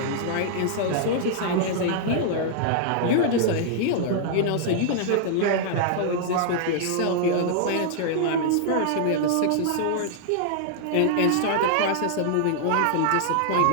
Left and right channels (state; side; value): different; both; correlation -0.01